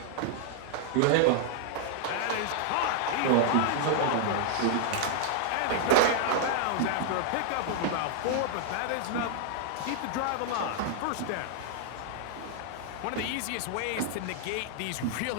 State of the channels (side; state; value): both; different; correlation -0.01